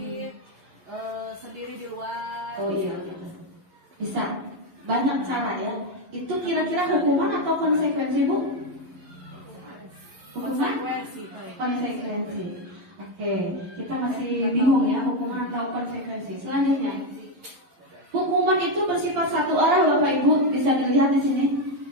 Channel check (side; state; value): left; late; 11 ms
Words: sendiri di luar. Oh iya gitu. Bisa. Banyak cara ya. Itu kira-kira hukuman atau konsekuensi Bu? Hukuman? Konsekuensi. Oke, kita masih bingung ya hukuman atau konsekuensi. Selanjutnya, hukuman itu bersifat satu arah Bapak Ibu, bisa dilihat di sini.